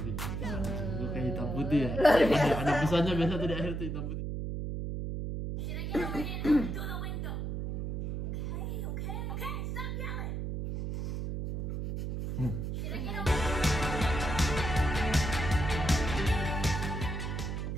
gitu. Gue kayak hitam putih ya. Ada pesannya biasa tuh di akhir tuh hitam putih.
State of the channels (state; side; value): noise; right; hum, 3 dB below the sound